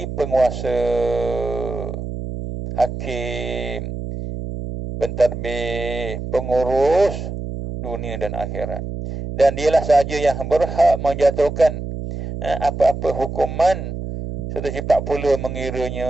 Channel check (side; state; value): right; noise; hum, 6 dB below the sound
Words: penguasa, hakim, pentadbir, pengurus dunia dan akhirat. Dan dialah sahaja yang berhak menjatuhkan apa-apa hukuman serta cepat pula mengiranya.